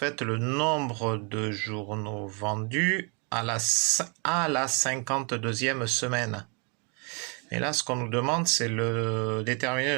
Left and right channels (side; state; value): left; quieter; 34.7 dB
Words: le nombre de journaux vendus à la 52e semaine. Et là, ce qu'on nous demande, c'est déterminer